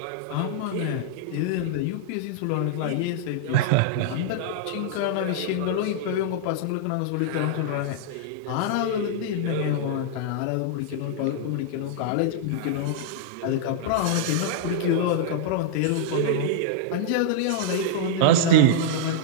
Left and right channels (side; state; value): both; different; correlation -0.02